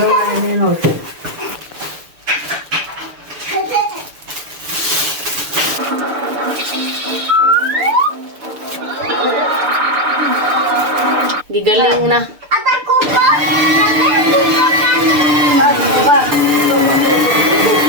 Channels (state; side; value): late; left; 6.7 ms